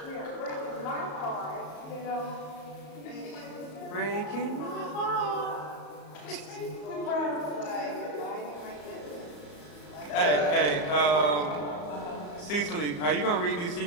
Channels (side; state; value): right; late; 34 ms